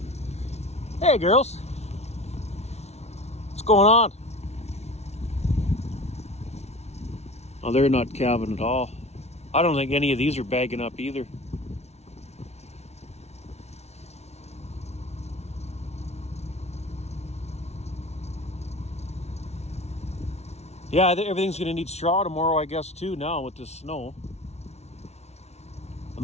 Hey girls, what's going on? Oh, they're not calving at all. I don't think any of these are bagging up either. Yeah, everything's going to need straw tomorrow, I guess, too, now with this snow. I'm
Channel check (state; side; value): late; right; 0.31 ms